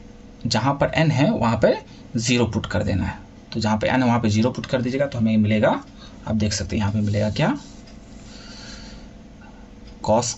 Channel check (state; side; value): identical; both; correlation 1.00